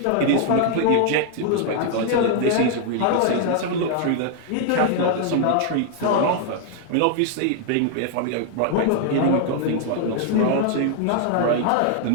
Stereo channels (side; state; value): both; different; correlation 0.00